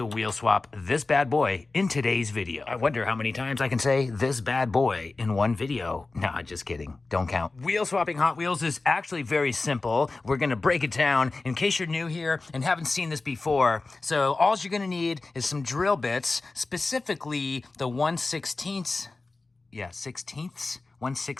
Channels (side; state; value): right; quieter; 3.5 dB